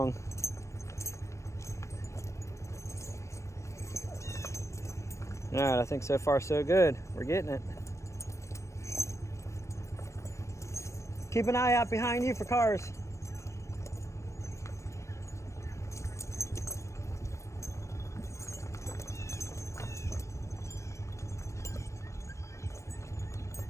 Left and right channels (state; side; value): late; right; 0.14 ms